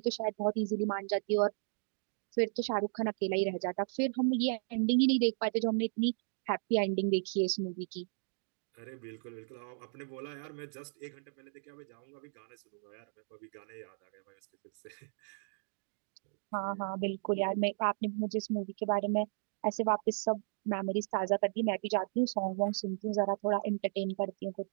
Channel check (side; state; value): left; silent; digital silence